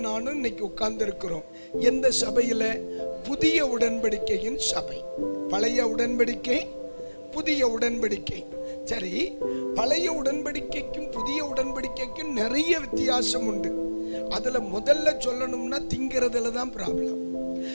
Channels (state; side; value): inverted; both; correlation -1.00